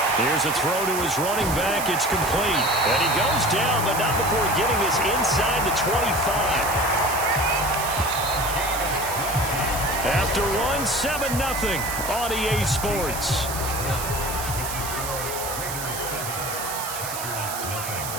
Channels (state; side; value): noise; right; hiss, 7 dB below the sound